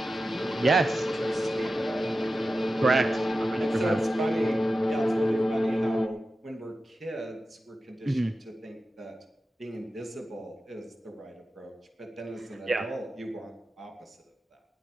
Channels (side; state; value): both; normal; correlation 0.93